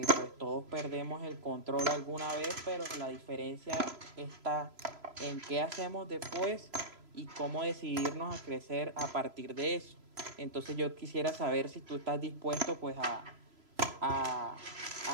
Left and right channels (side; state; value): left; late; 3.0 ms